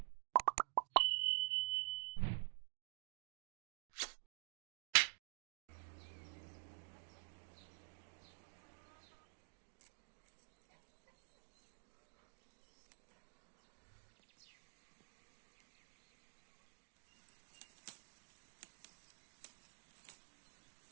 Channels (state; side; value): silent; left; digital silence